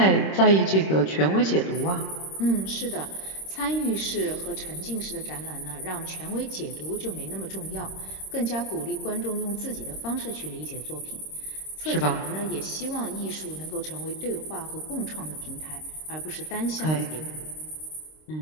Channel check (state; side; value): late; right; 26 ms